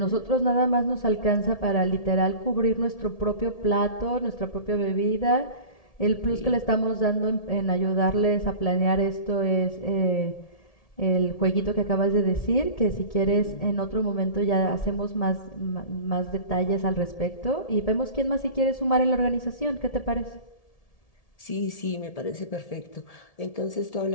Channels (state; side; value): late; right; 1.7 ms